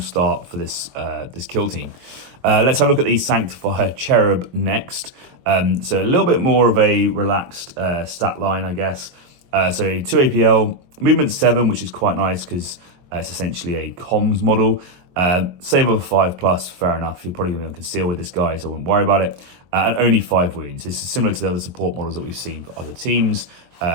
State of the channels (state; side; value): late; left; 23 ms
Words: start for this this kill team. Let's have a look at the Sanctifier Cherub next. So a little bit more of a relaxed stat line, I guess. So 2 APL, movement 7, which is quite nice because it's essentially a comms model. Save of 5+, fair enough. You're probably going to be on conceal with this guy, so I won't worry about it. And only 5 wounds. This is similar to the other support models that we've seen for other teams.